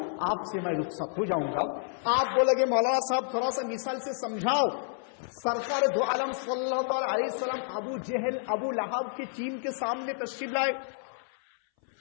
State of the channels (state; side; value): silent; right; 58 dB below the other